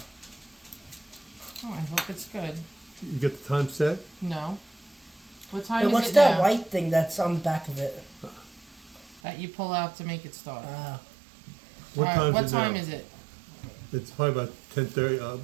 Oh, I hope it's good. You get the time set. No. What time Hey, is what's it that now? white thing that's on the back of it? That you pull out to make it start. What All right, time what is it time now? is it? It's probably about 10:30,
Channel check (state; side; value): drops out; left; at 9.2 s